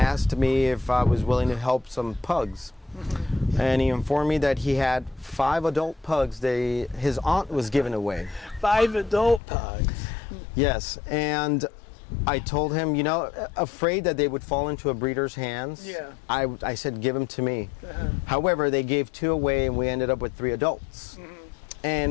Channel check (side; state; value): right; drops out; at 9.4 s